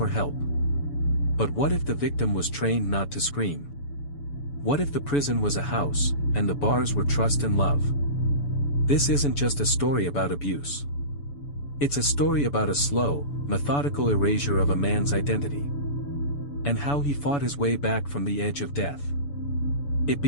help. But what if the victim was trained not to scream? What if the prison was a house, and the bars were trust and love? This isn't just a story about abuse. It's a story about a slow, methodical erasure of a man's identity. And how he fought his way back from the edge of death. It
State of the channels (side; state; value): right; late; 7.0 ms